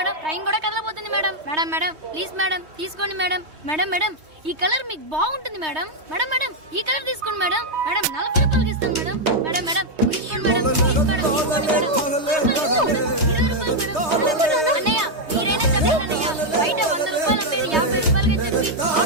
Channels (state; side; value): late; left; 3.2 ms